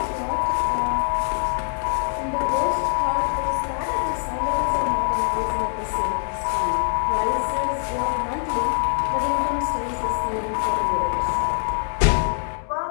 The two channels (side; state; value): right; silent; digital silence